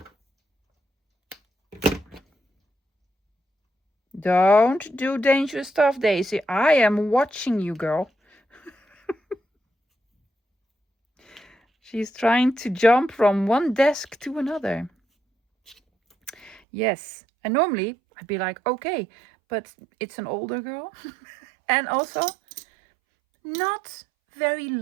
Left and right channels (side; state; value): left; drops out; at 16.6 s